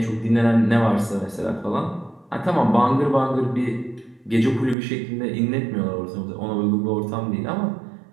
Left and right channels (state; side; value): drops out; left; at 4.8 s